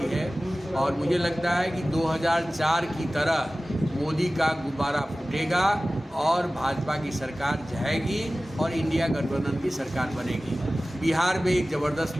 है और मुझे लगता है कि 2004 की तरह मोदी का गुब्बारा फूटेगा और भाजपा की सरकार जाएगी और इंडिया गठबंधन की सरकार बनेगी। बिहार में एक ज़बरदस्त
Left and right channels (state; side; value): normal; both; correlation 0.97